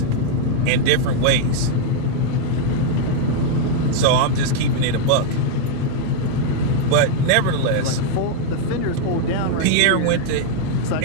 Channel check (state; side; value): different; both; correlation 0.00